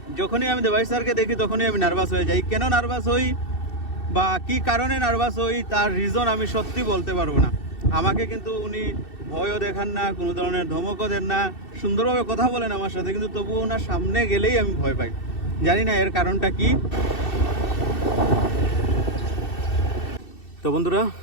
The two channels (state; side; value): late; right; 2.7 ms